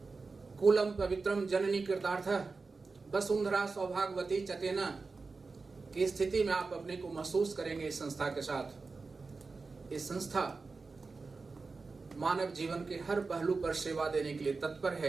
कुलम पवित्रम जननी कृतार्थः वसुंधरा सौभाग्यवती चतेना की स्थिति में आप अपने को महसूस करेंगे इस संस्था के साथ। इस संस्था मानव जीवन के हर पहलू पर सेवा देने के लिए तत्पर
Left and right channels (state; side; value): quieter; left; 4.1 dB